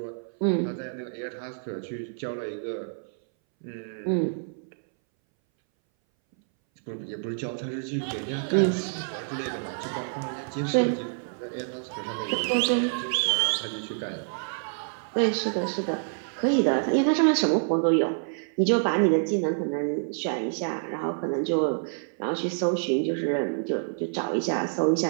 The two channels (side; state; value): left; silent; 60 dB below the other